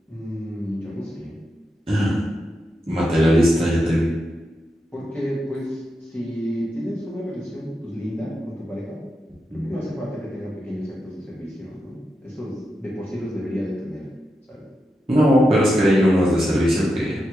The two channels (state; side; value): normal; both; correlation 0.87